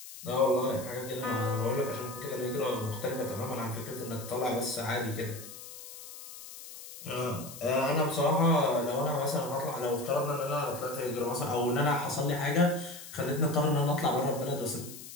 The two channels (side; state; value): left; noise; hiss, 14 dB below the sound